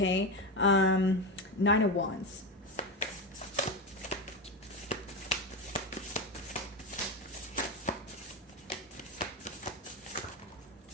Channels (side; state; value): both; normal; correlation 0.16